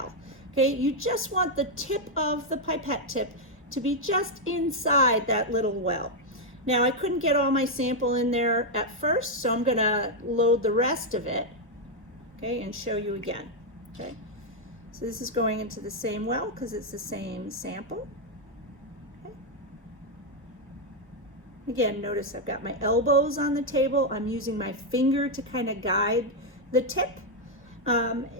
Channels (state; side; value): normal; both; correlation 0.00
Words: Okay, you just want the tip of the pipette tip to be just inside that little well. Now, I couldn't get all my sample in there at first, so I'm going to load the rest of it, okay, and show you again. Okay, so this is going into the same well because it's the same sample. Again, notice I've got my elbows on the table. I'm using my finger to kind of guide the tip